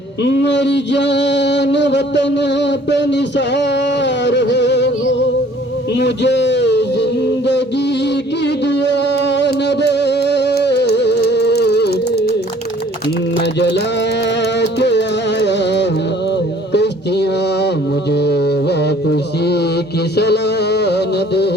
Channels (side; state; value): both; normal; correlation 0.55